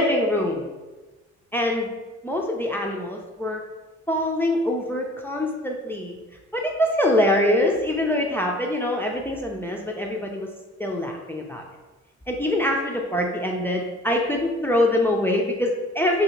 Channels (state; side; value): normal; both; correlation 0.48